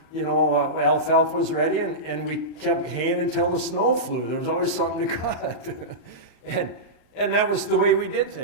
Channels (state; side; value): late; right; 39 ms